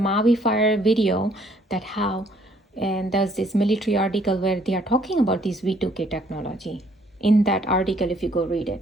Fire video, that how, and there's this military article where they are talking about this V2K technology. In that article, if you go read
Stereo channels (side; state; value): both; normal; correlation 0.63